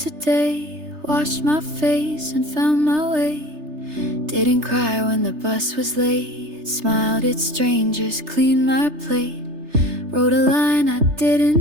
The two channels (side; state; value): left; late; 3.3 ms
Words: washed my face and found my way. Didn't cry when the bus was late, smiled at strangers, cleaned my plate. Wrote a line I